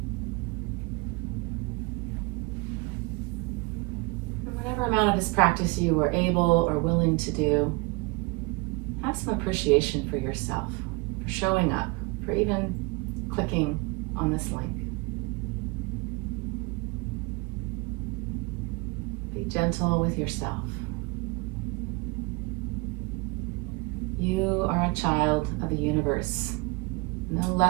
Whatever amount of this practice you are able or willing to do, have some appreciation for yourself, for showing up, for even clicking on this link. Be gentle with yourself. You are a child of the universe, no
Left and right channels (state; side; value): quieter; left; 26.2 dB